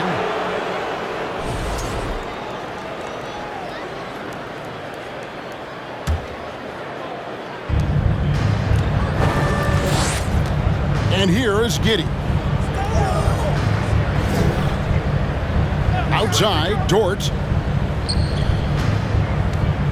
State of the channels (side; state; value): both; identical; correlation 1.00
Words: And here is Giddey. Outside, Dort.